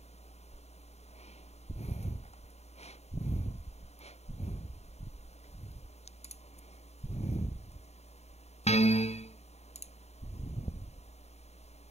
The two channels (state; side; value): late; right; 0.31 ms